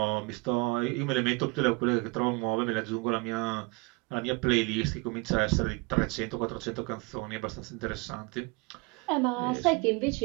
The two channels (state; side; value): quieter; left; 27.6 dB